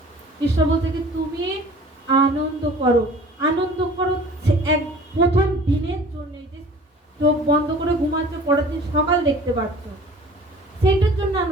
ঈশ্বর বলছে কি তুমি আনন্দ করো, আনন্দ করো এক প্রথম দিনের জন্য, যে চোখ বন্ধ করে ঘুমাচ্ছ, পরের দিন সকাল দেখতে পাচ্ছ, সেইটার জন্য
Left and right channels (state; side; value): normal; both; correlation 0.47